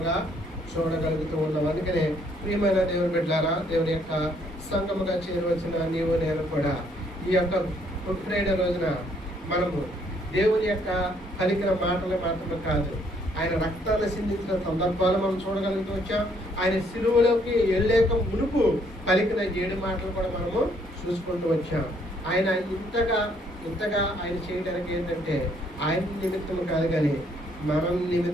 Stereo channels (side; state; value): both; normal; correlation 0.67